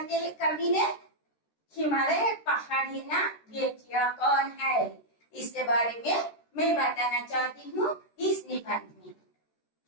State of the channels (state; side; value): late; right; 13 ms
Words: हैं कवि ने? हिमालय पहाड़ है ना, बेटियां कौन है, इसके बारे में मैं बताना चाहती हूँ इस निबंध में।